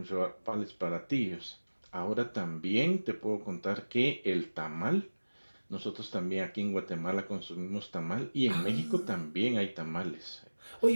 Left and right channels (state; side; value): inverted; both; correlation -1.00